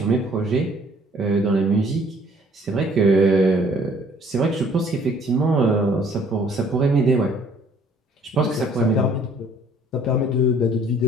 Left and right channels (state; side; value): normal; both; correlation 0.59